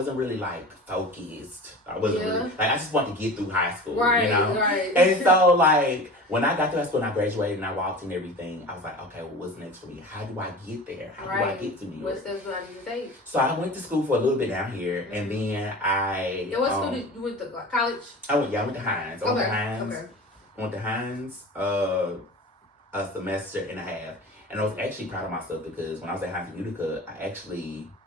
really like focused. I wasn't really, like, I just wanted to get through high school, right, you know? Right. And so like, when I got to high school and I graduated and I walked in everything, I was like, okay, well, what's next for me? How do I get there? How do I get to New York? What steps do I need to take? So I went to school for a little bit down here, and then Yeah, what school did you went to? College? I went to Hinds. I went to Hinds a semester and a half. And I was actually proud of myself, because when I was at Hinds Community College,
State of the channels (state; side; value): normal; both; correlation 0.36